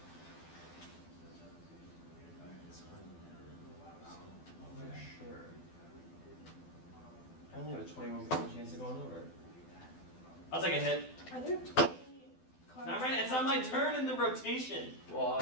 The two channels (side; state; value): right; late; 12 ms